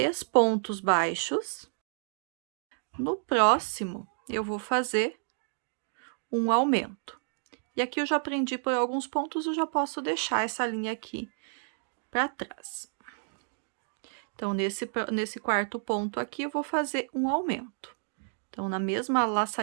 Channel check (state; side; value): silent; left; digital silence